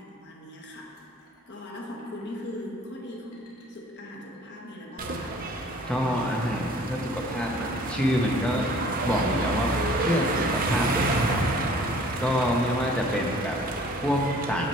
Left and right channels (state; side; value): normal; both; correlation 0.52